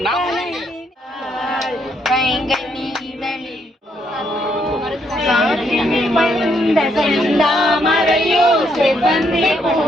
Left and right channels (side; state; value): both; normal; correlation 0.74